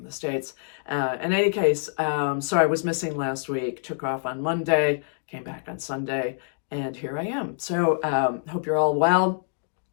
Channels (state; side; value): silent; right; digital silence